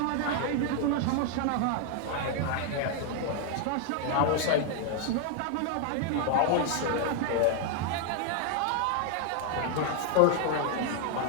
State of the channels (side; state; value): both; different; correlation 0.00